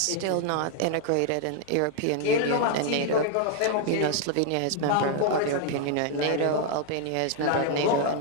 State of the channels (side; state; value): both; different; correlation 0.00